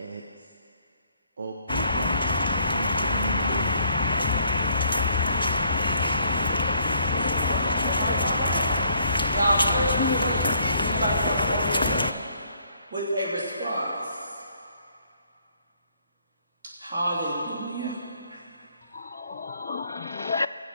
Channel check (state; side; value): inverted; both; correlation -0.65